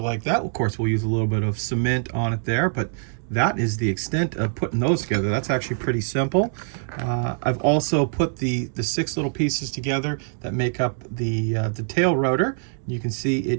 that. Of course, we'll use a little bit of cement on it there, but that is the extent of putting those together. That's actually pretty simple. I've also put the 6 little pieces together that make up the tail rotor. You can see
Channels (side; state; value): left; silent; digital silence